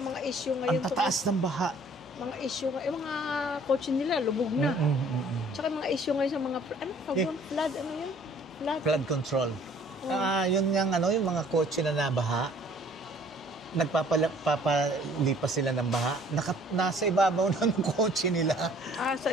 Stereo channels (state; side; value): normal; both; correlation 0.56